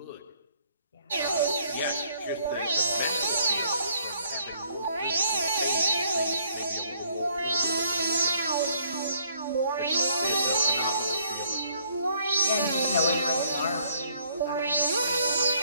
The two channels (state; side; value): inverted; both; correlation -0.64